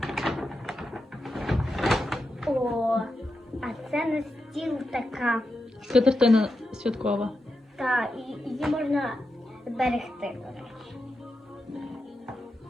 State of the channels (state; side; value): normal; both; correlation 0.88